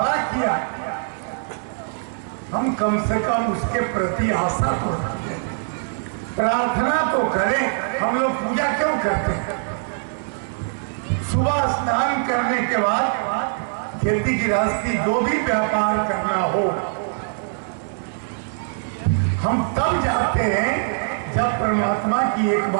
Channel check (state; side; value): silent; left; digital silence